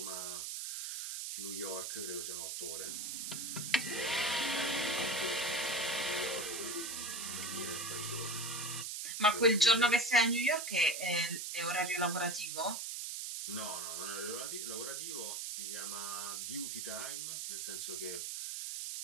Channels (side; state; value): right; noise; hiss, 4 dB below the sound